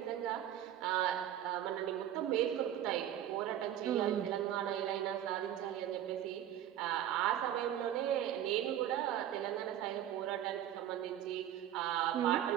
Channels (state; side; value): quieter; left; 11.3 dB